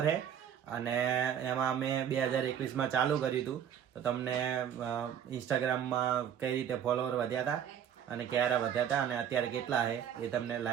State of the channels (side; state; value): left; quieter; 9.0 dB